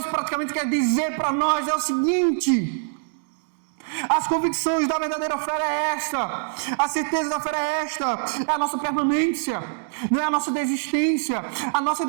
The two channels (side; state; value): left; silent; digital silence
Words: praticamente quer dizer para nós é o seguinte: as convicções da verdadeira fé é esta, a certeza da fé é esta, é a nossa permanência, não é a nossa desistência. A nossa